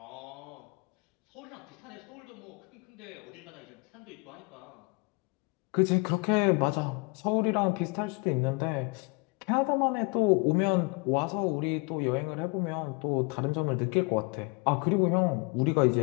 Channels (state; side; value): quieter; right; 30.4 dB